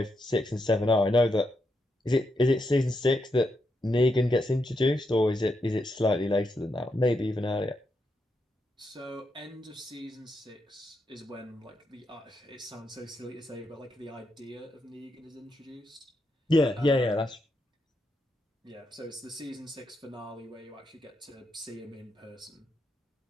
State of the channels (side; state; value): both; normal; correlation 0.82